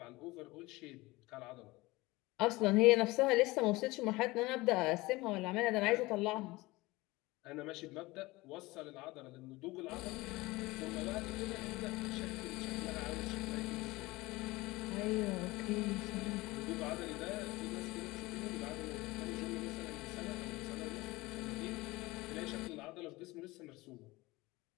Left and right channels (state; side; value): quieter; right; 21.1 dB